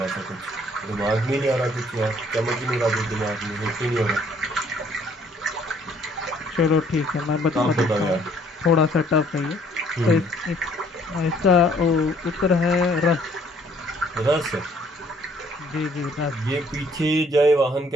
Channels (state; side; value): normal; both; correlation 0.62